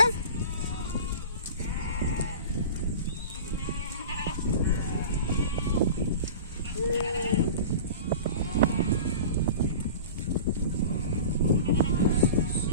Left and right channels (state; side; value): inverted; both; correlation -0.36